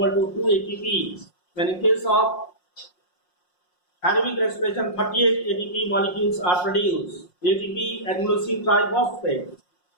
to 2 ATP. When in case of aerobic respiration, 38 ATP molecules are produced. ATP, adenosine triphosphate,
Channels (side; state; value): right; late; 5.6 ms